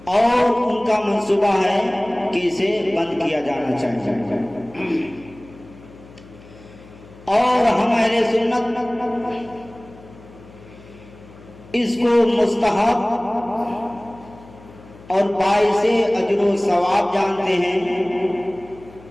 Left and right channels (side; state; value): left; noise; hum, 22 dB below the sound